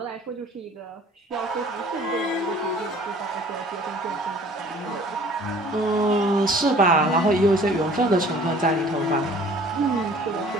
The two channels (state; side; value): normal; both; correlation 0.51